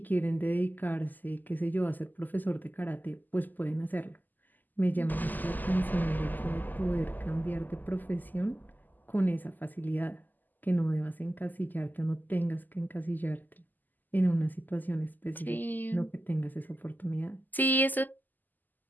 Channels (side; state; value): right; late; 0.085 ms